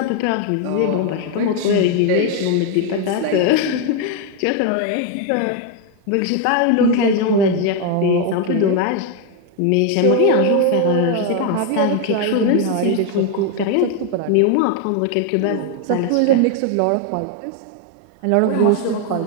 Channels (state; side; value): different; both; correlation 0.01